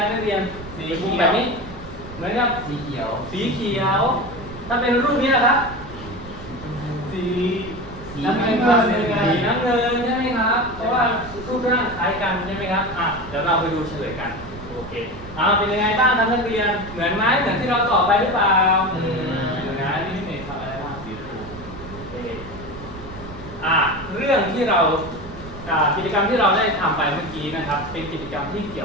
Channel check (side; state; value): right; noise; rumble, 15 dB below the sound